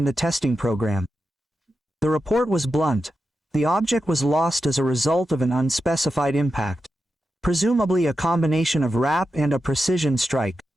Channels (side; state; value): both; normal; correlation 0.90